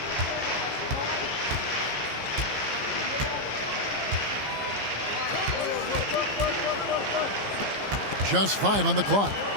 Just 5 on the clock.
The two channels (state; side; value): late; left; 15 ms